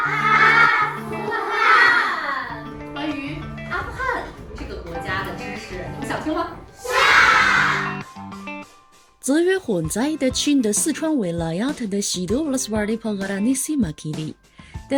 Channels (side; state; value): both; identical; correlation 1.00